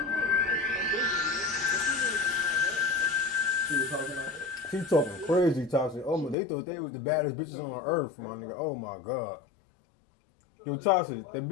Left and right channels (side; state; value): right; drops out; at 6.4 s